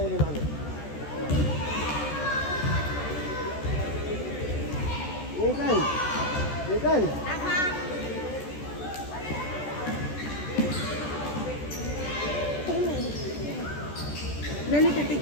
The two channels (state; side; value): late; right; 14 ms